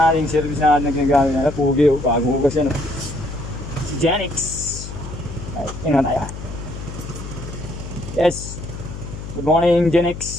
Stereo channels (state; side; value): noise; left; hum, 10 dB below the sound